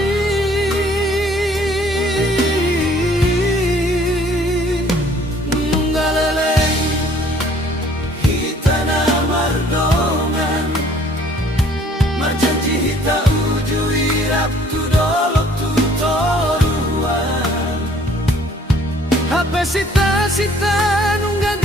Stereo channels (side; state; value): both; normal; correlation 0.58